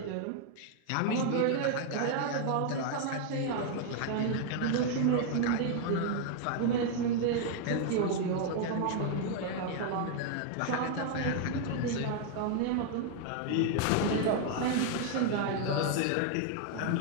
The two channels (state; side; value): different; both; correlation 0.00